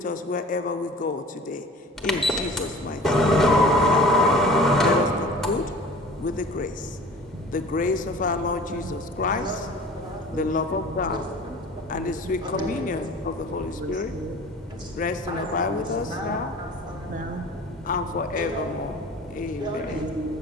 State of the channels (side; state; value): both; normal; correlation 0.43